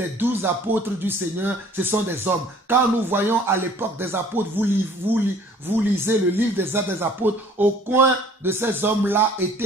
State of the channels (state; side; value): normal; both; correlation 0.53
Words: 12 apôtres du Seigneur, ce sont des hommes. Quand nous voyons à l'époque des apôtres, vous lisez le livre des Actes des apôtres, au coin de ces hommes-là